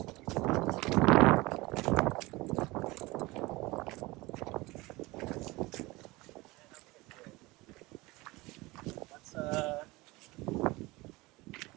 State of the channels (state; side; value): quieter; left; 21.8 dB